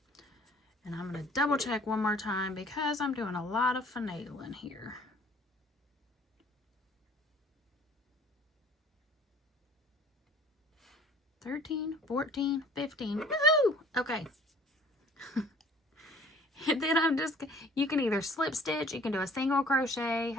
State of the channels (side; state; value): both; normal; correlation 0.52